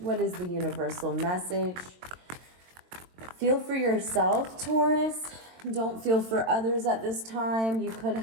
is the universal message? Feel for yourself, Taurus. Don't feel for others at this time. You could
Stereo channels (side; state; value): left; late; 22 ms